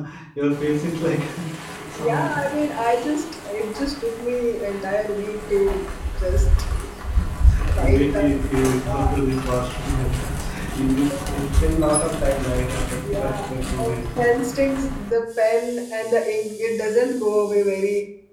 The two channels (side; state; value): both; identical; correlation 1.00